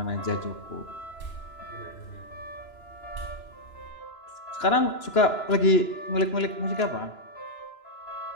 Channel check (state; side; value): late; right; 2.9 ms